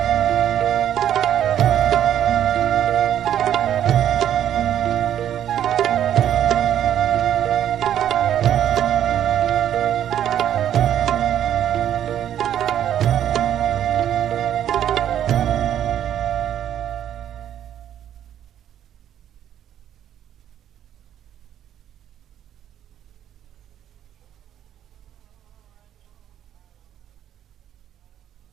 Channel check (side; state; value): left; quieter; 10.5 dB